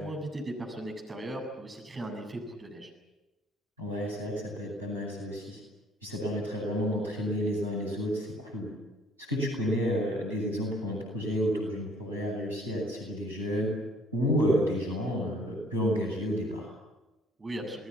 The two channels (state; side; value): normal; both; correlation 0.60